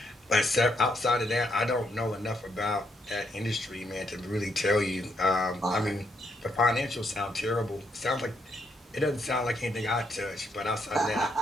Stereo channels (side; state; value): both; normal; correlation 0.76